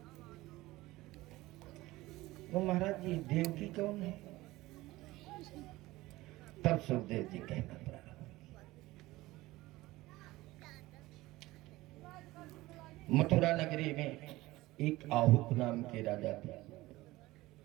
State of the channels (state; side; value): quieter; left; 18.7 dB